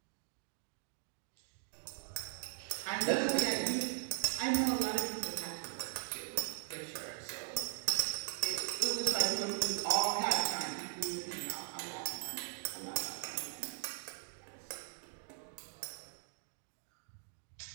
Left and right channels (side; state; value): left; silent; digital silence